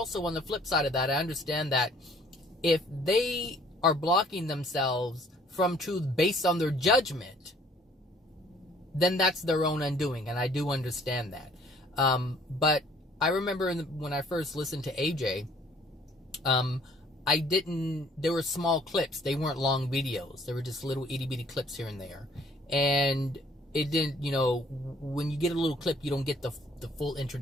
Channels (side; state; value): both; normal; correlation 0.58